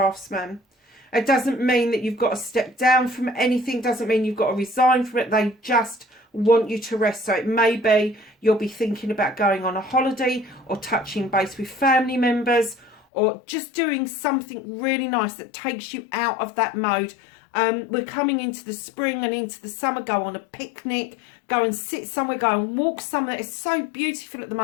It doesn't mean that you've got to step down from anything. Doesn't mean you've got to resign from it. They just want you to rest. So it may be you'll be thinking about going on a holiday or touching base with family members or just doing something really nice that takes you out of that mode. We're coming into the spring and into the summer. Go on a picnic, go and sit somewhere, go and walk somewhere. It's so beautiful at the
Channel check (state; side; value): drops out; right; at 13.0 s